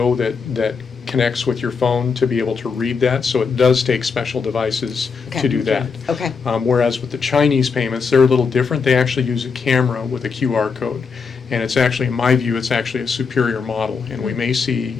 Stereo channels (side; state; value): right; quieter; 5.3 dB